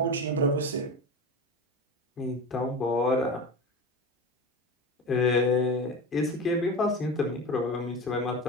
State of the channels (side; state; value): both; normal; correlation 0.27